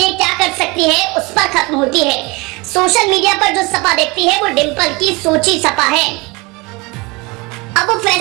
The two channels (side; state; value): left; quieter; 25.7 dB